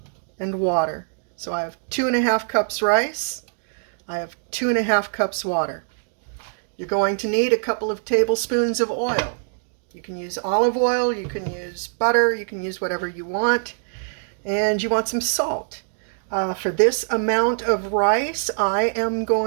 and water. So I have 2.5 cups rice. I have 2.5 cups water. You're going to need a couple of tablespoons of oil. You can use olive oil, you can use butter, you can use whatever you want. And you want some salt. For this amount of rice, I am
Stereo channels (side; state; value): left; silent; digital silence